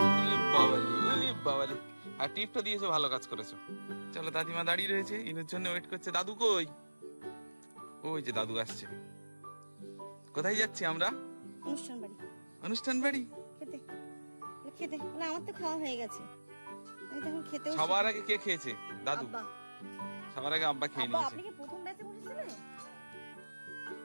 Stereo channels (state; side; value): inverted; both; correlation -1.00